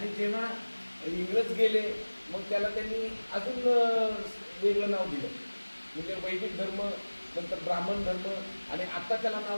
जेव्हा इंग्रज गेले मग त्याला त्यांनी अजून वेगळं नाव दिलं, म्हणजे वैदिक धर्म, नंतर ब्राह्मण धर्म, आणि आता त्याला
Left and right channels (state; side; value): inverted; both; correlation -1.00